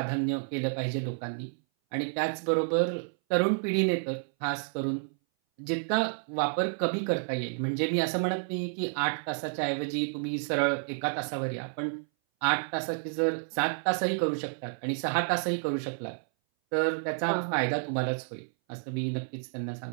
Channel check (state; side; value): silent; left; 58 dB below the other